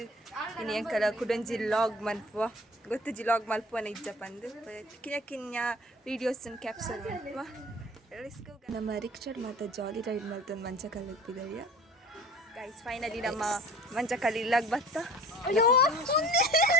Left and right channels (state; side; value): normal; both; correlation 0.44